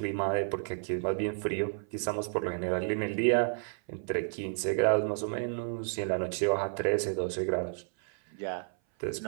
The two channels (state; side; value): silent; left; 56 dB below the other